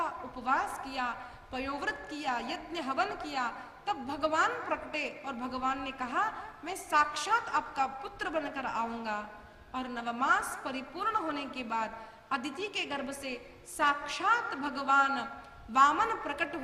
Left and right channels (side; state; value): both; identical; correlation 1.00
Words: उपवास किया, पयोव्रत किया, यज्ञ हवन किया। तब भगवान प्रकटे और भगवान ने कहा, मैं साक्षात आपका पुत्र बनकर आऊंगा। और नवमास परिपूर्ण होने के बाद अदिति के गर्भ से साक्षात भगवान वामन प्रकट